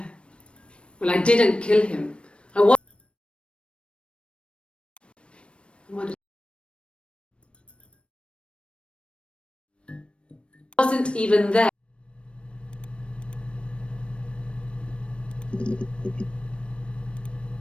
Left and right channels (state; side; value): late; right; 0.059 ms